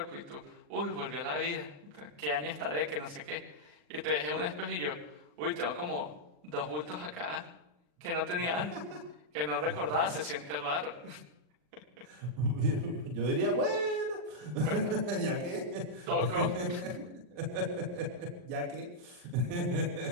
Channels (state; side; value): late; left; 40 ms